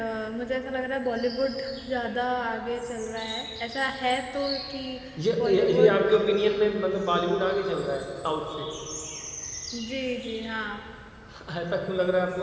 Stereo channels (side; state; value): both; identical; correlation 1.00